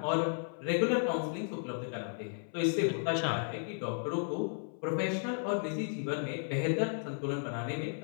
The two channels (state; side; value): silent; right; 55 dB below the other